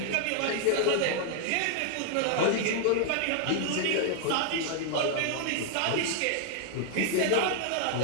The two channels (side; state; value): both; different; correlation 0.00